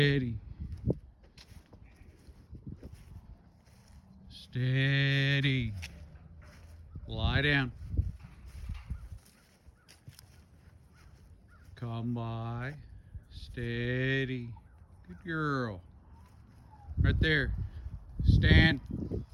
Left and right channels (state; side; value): identical; both; correlation 1.00